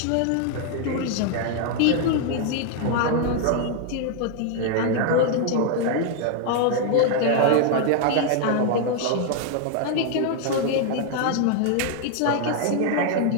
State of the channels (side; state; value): both; different; correlation 0.00